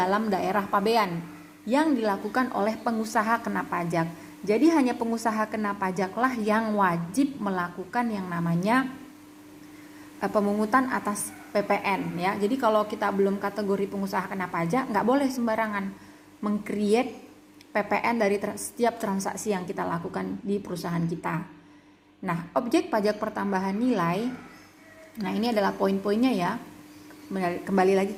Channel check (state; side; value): identical; both; correlation 1.00